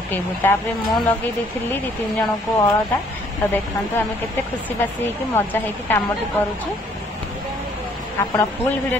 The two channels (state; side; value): normal; both; correlation 0.62